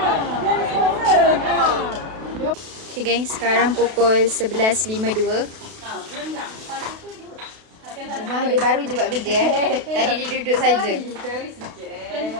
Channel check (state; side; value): late; left; 32 ms